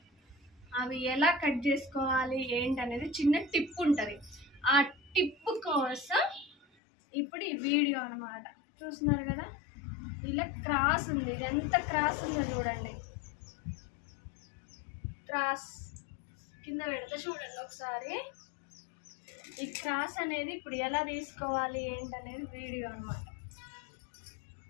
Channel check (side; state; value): right; drops out; at 6.7 s